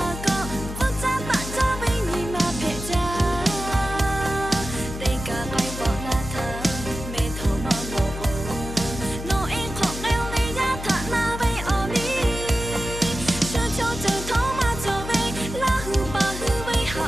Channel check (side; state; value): left; noise; hum, 8 dB below the sound